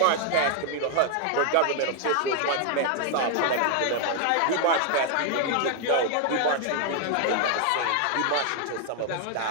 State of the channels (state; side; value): different; both; correlation 0.00